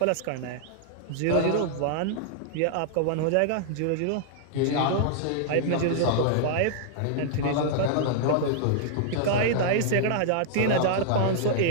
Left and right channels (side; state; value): both; different; correlation -0.01